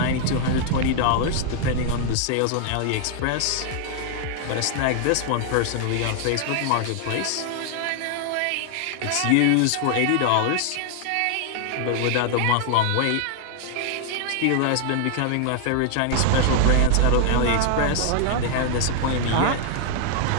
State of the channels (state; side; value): different; both; correlation 0.00